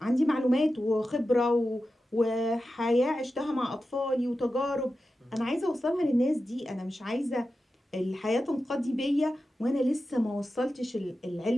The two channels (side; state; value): both; normal; correlation 0.92